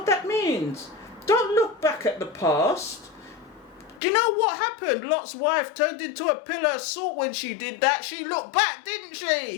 that means? Don't look back at the past. Do you know what happened? Lot's wife turned into a pillar of salt when she did that. She looked back, didn't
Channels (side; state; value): right; drops out; at 4.0 s